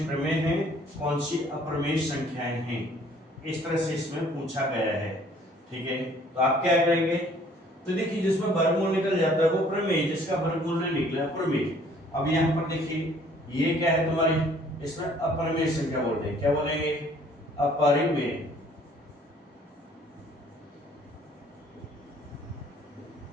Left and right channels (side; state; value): both; normal; correlation 0.58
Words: प्रमेय हैं, कौन सी अप्रमेय संख्याएं हैं, इस तरह से इसमें पूछा गया है। ठीक है, तो आप क्या करेंगे, तो देखिए जिसमें वर्गमूल निकल जाता है वो प्रमेय, जिसका वर्गमूल नहीं निकला प्रमेय। अब यहाँ पर देखिए ये क्या है तुम्हारी, इसमें अप्रमेय संख्या बोल रहे हैं। क्या बोलेंगे, अपरिमेय।